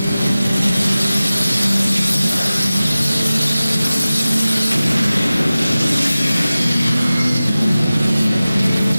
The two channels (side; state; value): both; inverted; correlation -0.97